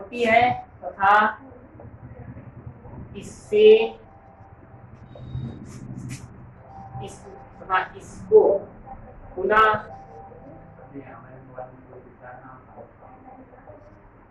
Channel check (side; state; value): both; identical; correlation 1.00